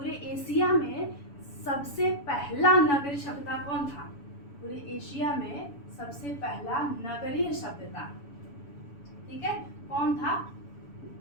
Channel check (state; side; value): late; right; 7.1 ms